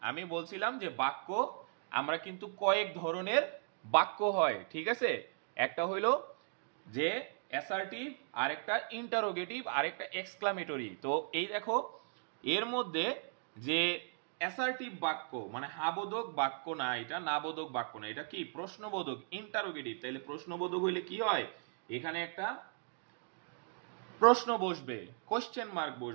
আমি বলছিলাম যে বাক্য আমরা কিন্তু কয়েক ধরনের বাক্য হয়, ঠিক আছে, একটা হইলো যে অ্যাসার্টিভ, আরেকটা ইন্টারোগেটিভ, আরেকটা এক্সক্লামেটরি। তো এই দেখো এর মধ্যে যে অ্যাসার্টিভ বাক্য মানে হাবোধক বাক্য না, এটা নাবোধক বাক্য না, এটা কি প্রশ্নবোধক, ইন্টারোগেটিভ। তাহলে প্রশ্নবোধক হইলে কি হয়, এখানে একটা প্রশ্ন বসবে, কোশ্চেন মার্ক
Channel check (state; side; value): silent; left; digital silence